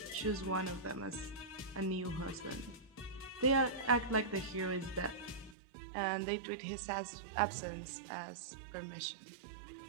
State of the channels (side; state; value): left; drops out; at 5.6 s